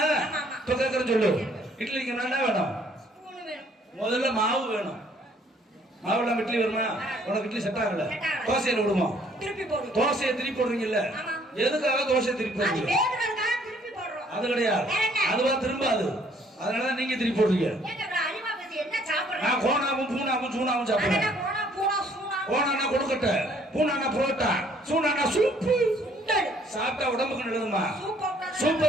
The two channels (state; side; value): normal; both; correlation 0.62